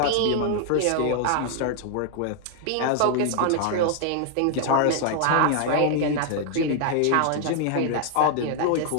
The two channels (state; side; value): different; both; correlation 0.00